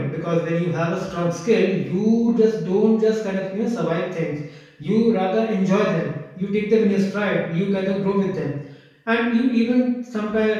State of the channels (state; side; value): identical; both; correlation 1.00